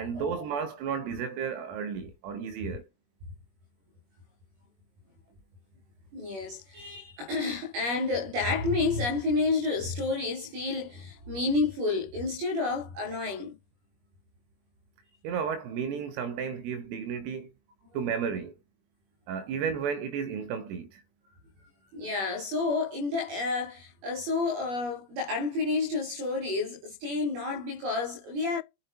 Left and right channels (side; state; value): left; late; 21 ms